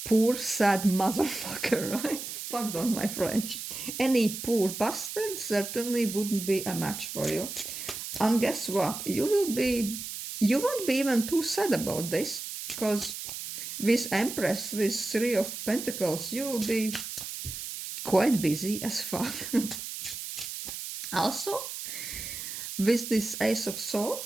poor, sad motherfucker, right? Pardon my French. Any poor bastard certainly wouldn't be a match for you. And guess what? You won't be even too sad about this, because with Empress, with Three of Pentacles, you will be quite busy as fuck. Also, with this Ace of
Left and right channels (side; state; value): right; noise; hiss, 7 dB below the sound